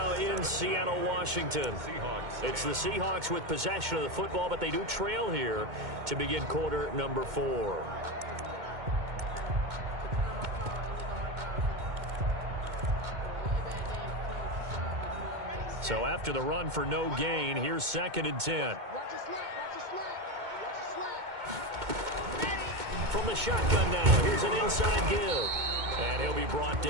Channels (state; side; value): late; left; 2.2 ms